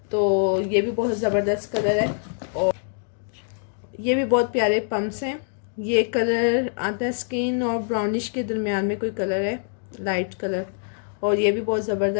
तो ये भी बहुत ज़बरदस्त कलर है और ये भी बहुत प्यारे पम्प्स हैं। ये कलर आता है स्किन और ब्राउनिश के दरमियान में कोई कलर है, लाइट कलर। और ये भी बहुत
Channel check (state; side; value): silent; right; digital silence